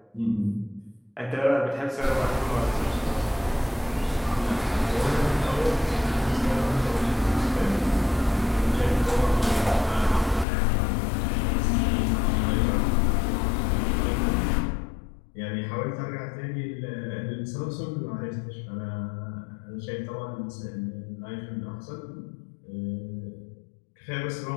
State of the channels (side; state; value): right; drops out; at 10.5 s